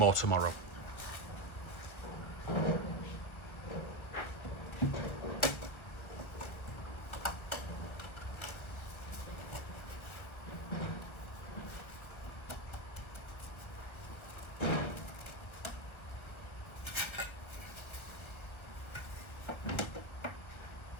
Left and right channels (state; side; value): late; right; 1.3 ms